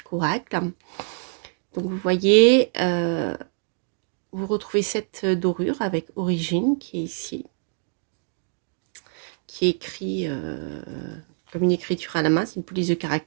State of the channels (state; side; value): silent; left; 62 dB below the other